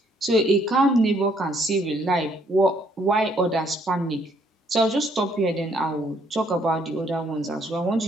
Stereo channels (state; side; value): normal; both; correlation 0.67